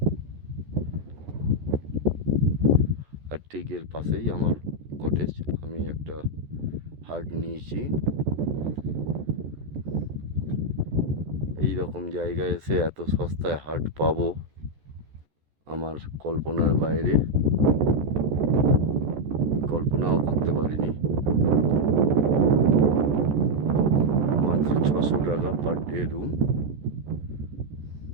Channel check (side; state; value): left; late; 14 ms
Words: আর ঠিক এর পাশেই আমার কটেজ। আমি একটা হাট নিয়েছি। এই রকম জায়গায় এসে এত সস্তায় হাট পাবো আমার কল্পনার বাইরে, কল্পনাও করতে পারিনি। মাত্র 600 টাকা পার ডে রুম।